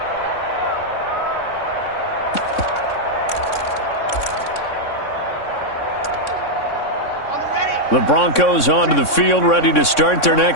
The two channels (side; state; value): right; late; 3.6 ms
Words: The Broncos onto the field, ready to start their